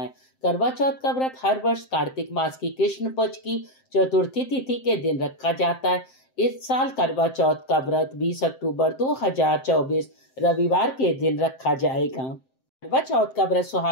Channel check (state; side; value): late; right; 7.7 ms